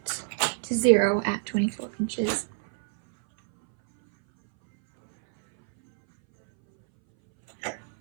to 0 at 24 inches.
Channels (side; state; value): left; silent; 61 dB below the other